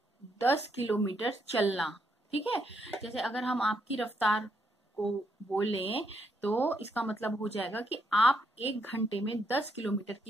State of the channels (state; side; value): normal; both; correlation 0.76